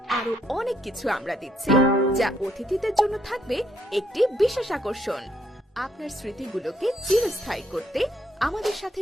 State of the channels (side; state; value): both; normal; correlation 0.72